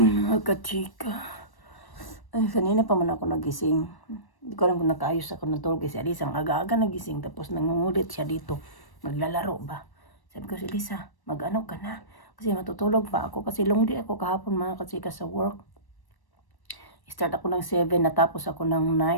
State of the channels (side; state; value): right; late; 1.1 ms